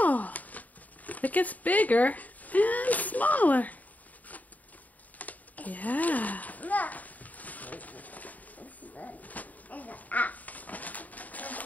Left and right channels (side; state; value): right; late; 0.075 ms